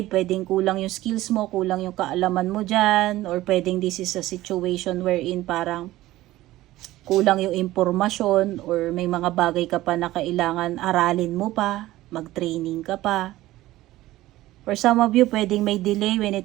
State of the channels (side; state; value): left; quieter; 16.4 dB